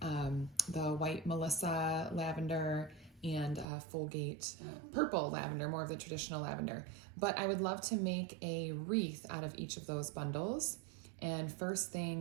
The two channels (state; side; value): drops out; left; at 3.7 s